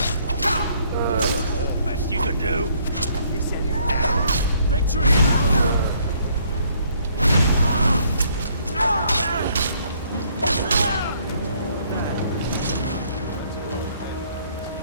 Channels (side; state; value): both; inverted; correlation -0.65